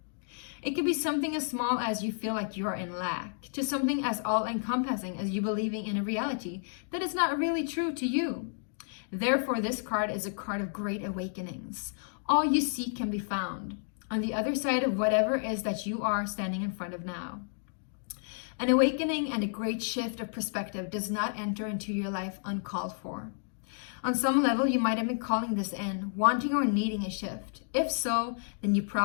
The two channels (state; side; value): silent; right; digital silence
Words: It could be something as small as you feel like you are in lack, to something as all-encompassing as you believing in a reality that is not really true to you. Therefore, this card is a card of great awakenings. All you seek can be found on the other side of whatever it is that you are standing in front of now. An awakening and a great shift of perspective does not enter into your life uncalled for. On some level, you might have been calling this in, wanting or needing a shift. If so, then you